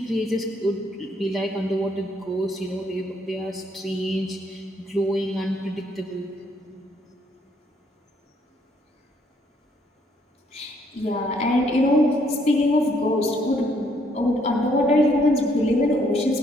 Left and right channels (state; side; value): normal; both; correlation 0.69